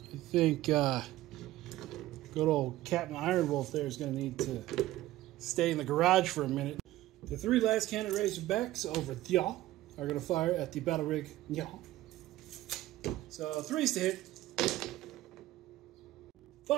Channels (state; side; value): quieter; left; 15.8 dB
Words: I think good old Captain Ironwolf there is going to need to stay in the garage for a minute. The 3 last cannon Razorbacks over there are going to fire at the battle rig. So 3s to hit.